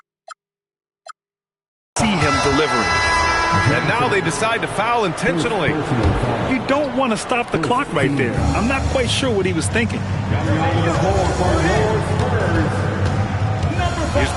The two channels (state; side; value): identical; both; correlation 1.00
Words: see him delivering. And now they decide to foul intentionally. You don't want to stop the clock right there. I'm not quite sure what he was thinking. Here's